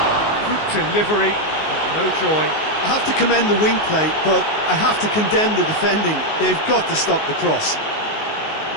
Good delivery, but no joy. I have to commend the wing play, but I have to condemn the defending. They've got to stop the cross.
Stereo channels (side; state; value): right; late; 19 ms